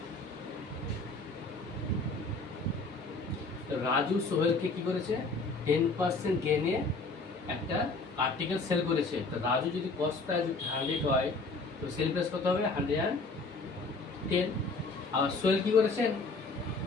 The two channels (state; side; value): quieter; right; 3.6 dB